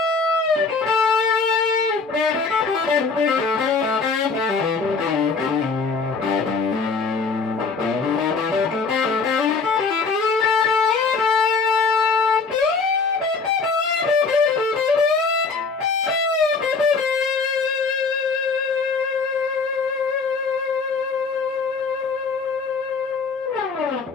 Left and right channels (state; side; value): quieter; right; 4.6 dB